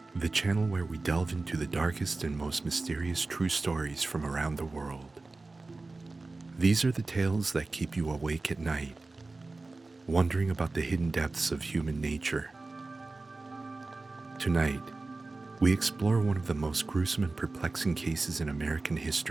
the channel where we delve into the darkest and most mysterious true stories from around the world. These are the tales that keep you awake at night, wondering about the hidden depths of human nature. Tonight, we explore one of the most gruesome and perplexing cases in American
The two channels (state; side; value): quieter; left; 3.4 dB